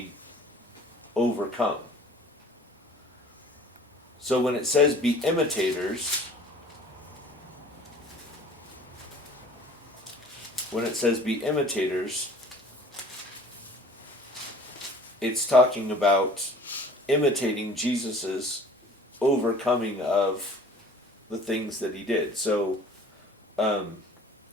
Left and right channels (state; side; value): normal; both; correlation 0.48